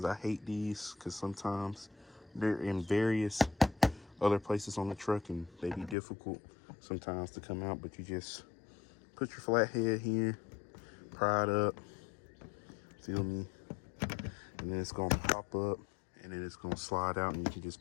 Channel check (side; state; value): right; drops out; at 6.0 s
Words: I hate these because sometimes they're in various other places on the truck and they be difficult sometimes to come out, but you just put your flat head here, pry it up, feel me, and then it's gonna pop up and then it's gonna slide out and you can